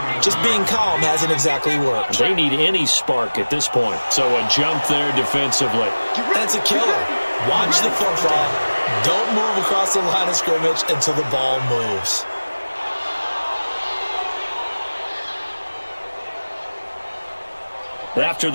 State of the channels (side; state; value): both; inverted; correlation -1.00